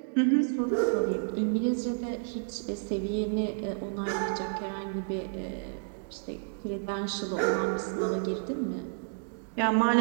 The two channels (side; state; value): left; silent; digital silence